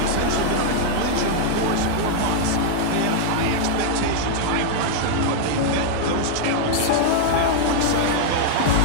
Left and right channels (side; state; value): both; different; correlation -0.01